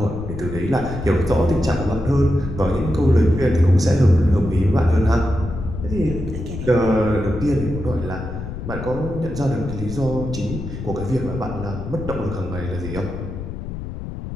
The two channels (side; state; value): left; noise; rumble, 8 dB below the sound